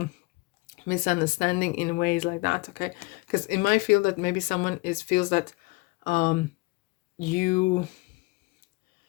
misunderstanding in ways like that, okay? Because it might feel that maybe someone feels that you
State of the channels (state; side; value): quieter; right; 25.0 dB